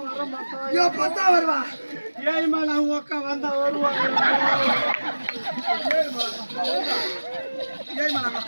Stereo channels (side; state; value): both; inverted; correlation -1.00